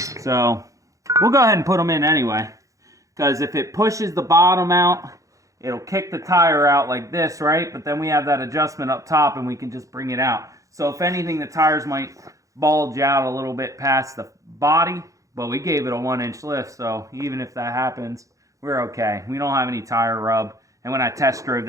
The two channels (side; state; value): left; late; 0.16 ms